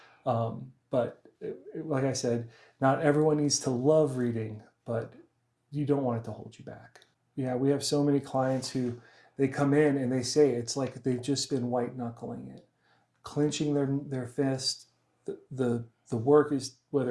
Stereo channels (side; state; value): both; identical; correlation 1.00